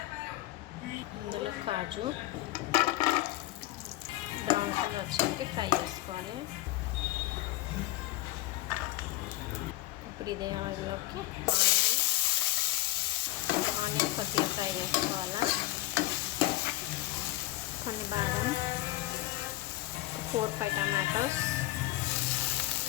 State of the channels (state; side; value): quieter; right; 17.5 dB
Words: ఇందులో కాజు బ్రౌన్ కలర్ వచ్చాక ఫ్రై చేసుకోవాలి. ఇప్పుడు ఇదే ఆయిల్లోకి ఆనియన్ కొద్దిగా ఫ్రై చేసుకోవాలా. కొన్ని బాదం, 4-5 టమాటోస్,